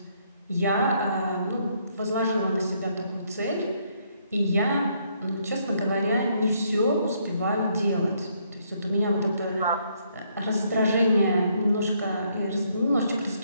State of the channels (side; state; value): both; inverted; correlation -0.71